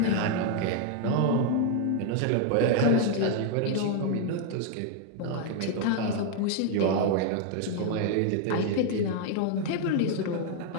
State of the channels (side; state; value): both; different; correlation 0.00